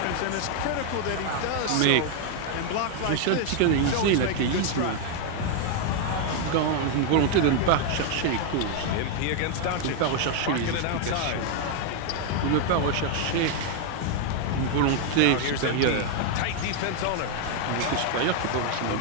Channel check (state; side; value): different; both; correlation 0.00